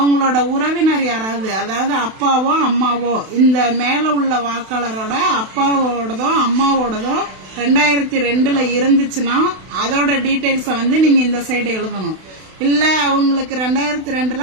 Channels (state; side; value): late; left; 32 ms